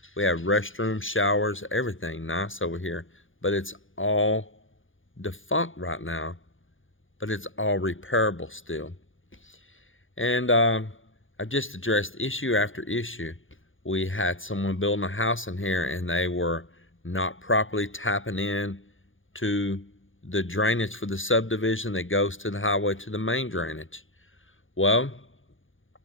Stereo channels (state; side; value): late; right; 0.58 ms